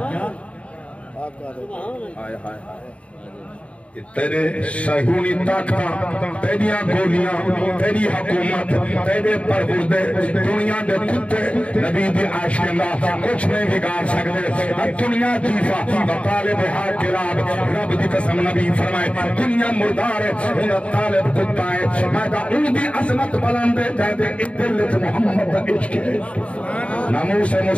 تیرے صہیونی طاقتاں تیریاں گولیاں تیری حکومت تیرے پروردے دنیا دے کتے نبی دی عاشقاں کچھ نہیں بگاڑ سکتے دنیا جیفا طالب ہا کلاب رب دی قسم نبی فرمائے دنیا مردار ہے انہاں طالب کتا ہے میں دا ان دی عظمت بلند ہے جہدے ادلت محمد دا عشق ہے ناموس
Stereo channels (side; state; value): right; late; 0.063 ms